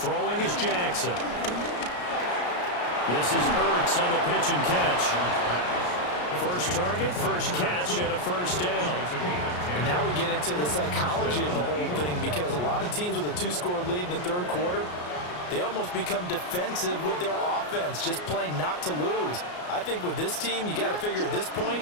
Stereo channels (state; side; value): late; right; 34 ms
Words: is Jackson. This is Ertz on the pitch and catch. First target, first catch, and a first down. And now we get into the psychology of the whole thing because a lot of teams with a 2-score lead in the third quarter, they almost become defensive with their offense, just playing not to lose. I think with this team, you got to figure at this point,